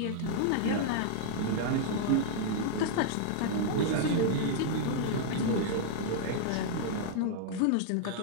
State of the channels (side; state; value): both; different; correlation -0.01